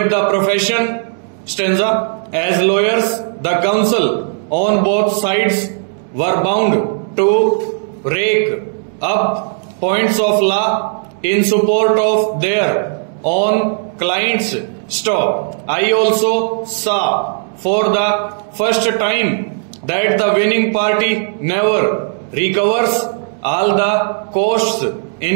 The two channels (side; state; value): left; silent; digital silence